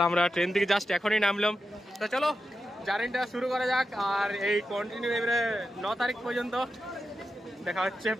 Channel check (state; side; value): normal; both; correlation 0.89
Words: আমরা ট্রেন থেকে জাস্ট এখনই নামলাম। তো চলো জার্নিটা শুরু করা যাক আর এই কন্টিনিউ এবারে 9 তারিখ পর্যন্ত দেখা হচ্ছে